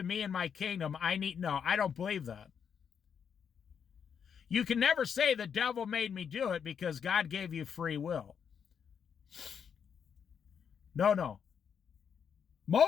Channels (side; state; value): right; quieter; 7.4 dB